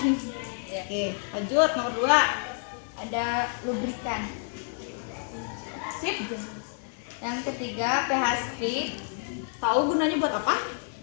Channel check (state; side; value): silent; right; 59 dB below the other